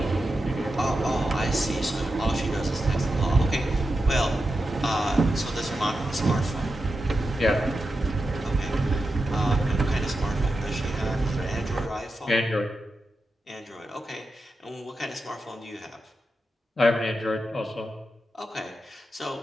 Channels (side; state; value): both; normal; correlation 0.89